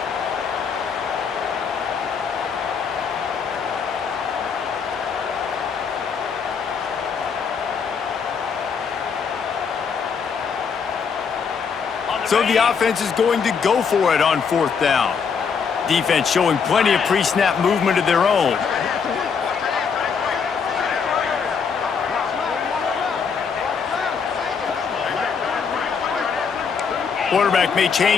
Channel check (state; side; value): quieter; right; 6.1 dB